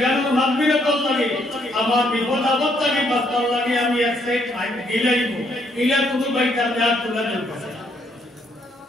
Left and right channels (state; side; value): normal; both; correlation 0.71